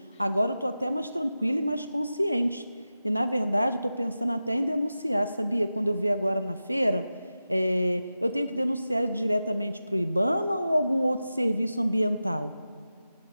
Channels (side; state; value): both; inverted; correlation -0.93